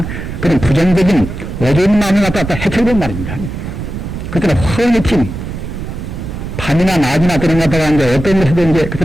그런 부정적인 어두운 마음을 갖다 해쳐본 말입니다. 그때는 훤히 튄 밤이나 낮이나 그런 갖다가 이제 어떤 것에도 이제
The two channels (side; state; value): right; noise; rumble, 7 dB below the sound